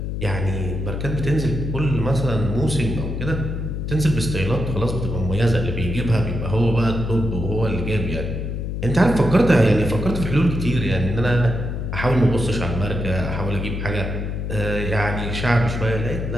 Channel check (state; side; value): noise; left; hum, 3 dB below the sound